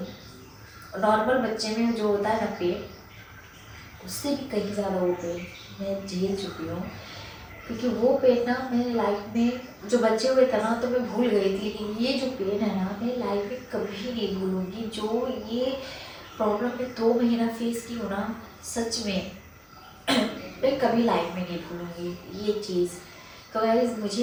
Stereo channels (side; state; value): both; identical; correlation 1.00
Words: नॉर्मल बच्चे में जो होता है ना पेट, उससे भी कहीं ज़्यादा वो पेन मैं झेल चुकी हूँ। क्योंकि वो पेन ना मेरे लाइफ में जो बच्चे हुए थे ना तो मैं भूल गई थी, लेकिन ये जो पेन है ना मेरी लाइफ में कभी नहीं भूलूंगी। जो ये प्रॉब्लम मैं 2 महीना फेस की हूँ ना, सच में मैं कभी लाइफ में नहीं भूलूंगी ये चीज़। तो गाइस